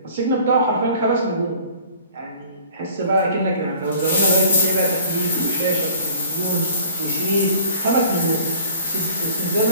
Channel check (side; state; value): both; inverted; correlation -0.49